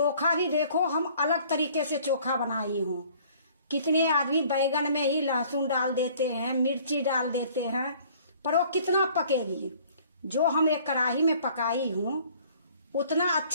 भी देखो हम अलग तरीके से चोखा बनाई हूँ। कितने आदमी बैगन में ही लहसुन डाल देते हैं, मिर्ची डाल देते हैं, पर वो कितना पकेगी। जो हम एक कढ़ाई में पकाई हूँ उतना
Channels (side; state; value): both; inverted; correlation -0.55